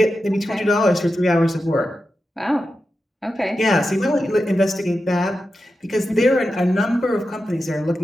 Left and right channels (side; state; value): both; normal; correlation 0.90